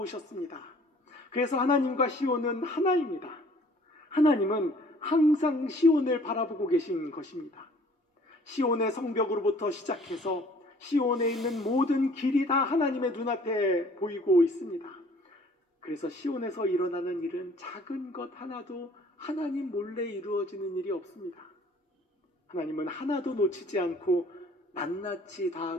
그래서 하나님과 시온은 하나입니다. 하나님은 항상 시온을 바라보고 계신 것입니다. 시온의 성벽으로부터 시작해서 시온에 있는 모든 길이 다 하나님의 눈앞에 보이고 있습니다. 그래서 시온에서 일어나는 일은 작은 것 하나도 하나님 몰래 이루어지는 일이 없습니다. 하나님은 하나도 놓치지 않고 낱낱이 다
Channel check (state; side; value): normal; both; correlation 0.55